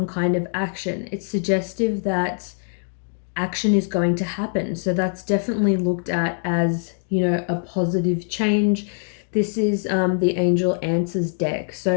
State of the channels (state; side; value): silent; right; 56 dB below the other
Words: kind of action. It's suggestive that action is going to happen. So that's definitely looked at as, a positive change. This is the Angel Answers deck.